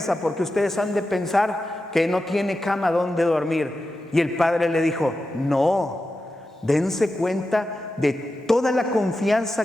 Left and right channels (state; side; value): normal; both; correlation 0.91